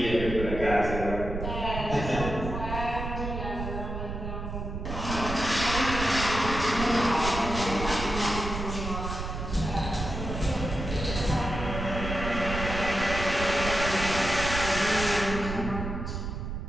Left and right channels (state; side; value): noise; right; rumble, 5 dB below the sound